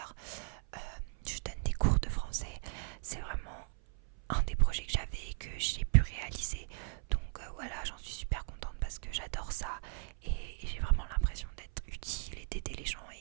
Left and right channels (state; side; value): silent; left; 53 dB below the other